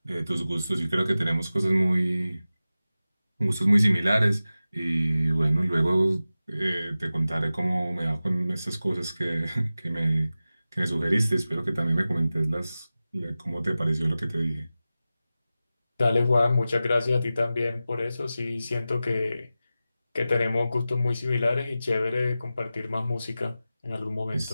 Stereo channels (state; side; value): inverted; both; correlation -0.95